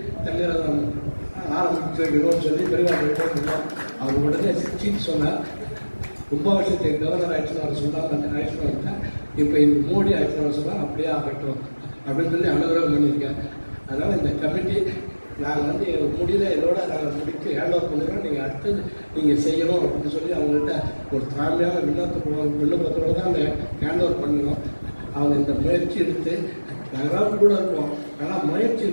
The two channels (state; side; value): inverted; both; correlation -1.00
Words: தங்க ரதம் ஆரம்பிச்சு வைக்கணும்னு சொல்லி பெரியவாழ்கிட்ட போயிருந்தோம். அவர் உடனே சீட் சொன்னார், கும்பாபிஷேகத்தை கவர்னர் ஆயிடுச்சுன்னு அவர் சொன்னாங்க. அந்த ஆயிடுச்சுன்னு வந்துட்டேன். இப்போ இந்த மோடி ஆயிடுச்சுன்னு சொன்னால் அப்படியே ஆகட்டும் அப்படின்னு சொல்லி அனுகிரகம் பண்ணியிருக்கேன். அதனால் இந்த கமிட்டி நாங்கள் வந்து முடியல இதோட நாங்கள் முடித்து ஹேண்ட் ஓவர் பண்ணுறோம். நீங்கள் அடுத்தது நீங்கள் செய்யணும் அப்படின்னு சொல்லி அவங்கள்ட்ட ஒரு தாழ்மையான விண்ணப்பத்தோடு தான் அந்த ஹேண்ட் ஓவர் பண்ணணும். அவங்க இந்த முயற்சி எடுத்து நாங்களாம் கூட இருக்கோம். ஆனால் முயற்சி